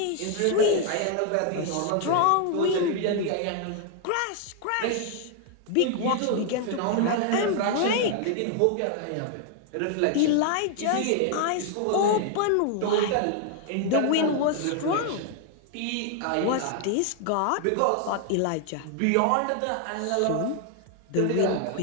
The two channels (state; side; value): different; both; correlation 0.00